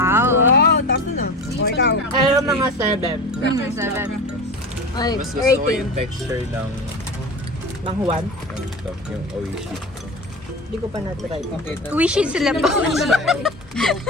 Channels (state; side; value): normal; both; correlation 0.29